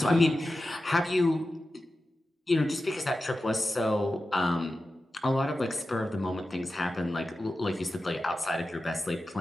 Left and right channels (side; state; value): both; normal; correlation 0.93